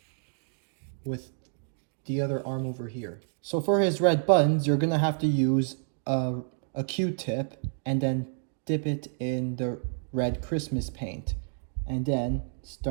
with the other arm over here. So for his red buttons, you're gonna have to use a Q-tip and then dip it in the red Christmas paint. And then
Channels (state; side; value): silent; left; digital silence